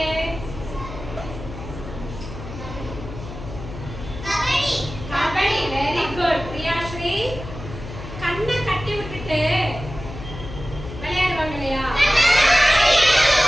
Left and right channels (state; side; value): noise; left; hum, 11 dB below the sound